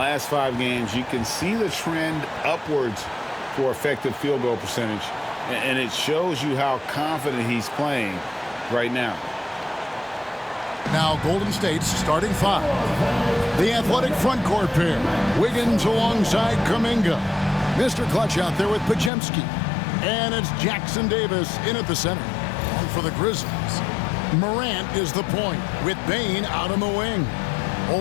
5 games, you can see the trend upwards for effective field goal percentage. And it shows you how confident he's playing right now. Now Golden State's starting 5. The athletic front court pair. Wiggins alongside Kuminga. Mr. Clutch out there with Pajemski. And it's Jackson Davis in at the center. And for the Grizzlies, Morant is the point with Bane out on the wing.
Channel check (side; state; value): right; drops out; at 19.1 s